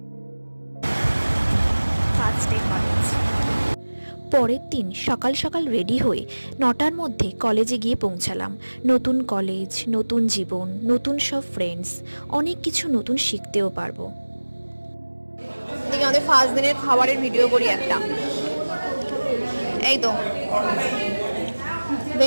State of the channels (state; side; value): inverted; both; correlation -1.00